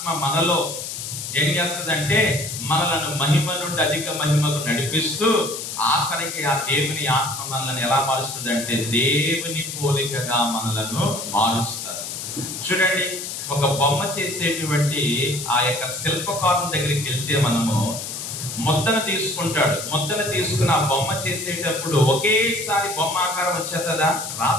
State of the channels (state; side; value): noise; left; hiss, 7 dB below the sound